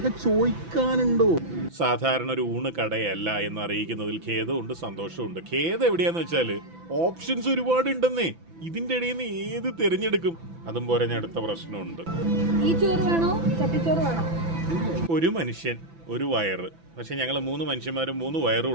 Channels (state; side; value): late; left; 6.0 ms